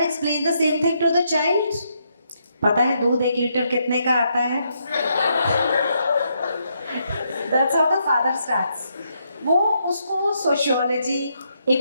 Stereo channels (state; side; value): inverted; both; correlation -0.77